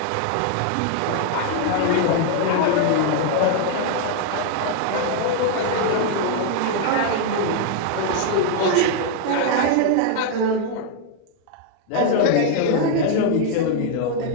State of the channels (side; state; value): both; different; correlation 0.00